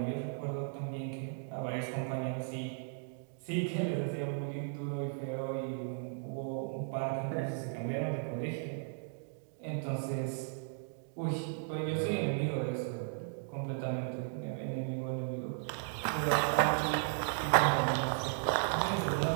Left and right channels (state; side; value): silent; left; digital silence